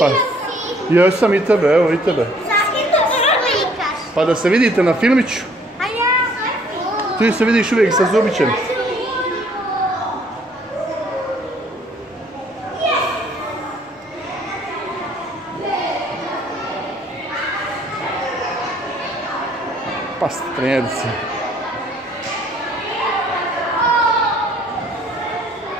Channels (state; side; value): normal; both; correlation 0.60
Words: Još sam i tebe, evo i tebe. Pa da se vidite na filmiću. Ti se vidiš uvijek sa Zubićem. Pa strelci.